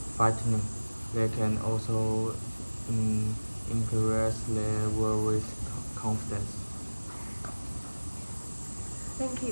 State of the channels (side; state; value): both; inverted; correlation -1.00